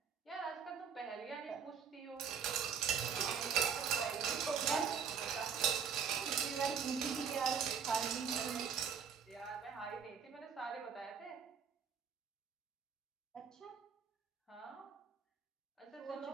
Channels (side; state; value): left; quieter; 7.0 dB